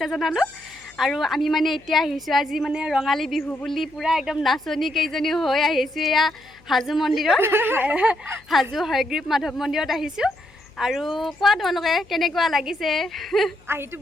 জনালোঁ। আৰু আমি মানে এতিয়া আহিছোঁ, আজি মানে ৰঙালী বিহু বুলি পূৰা একদম নাচনী কেইজনী হৈ আহিছোঁ। এয়া হাজো মন্দিৰত, হাজো হয়গ্ৰীৱ মাধৱ মন্দিৰত আহিছোঁ। আৰু কোৱা তোমালোকে কেনেকুৱা লাগিছে? আহিটো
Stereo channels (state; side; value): noise; left; hum, 28 dB below the sound